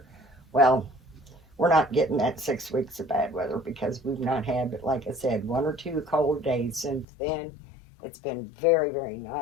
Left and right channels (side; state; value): right; drops out; at 7.1 s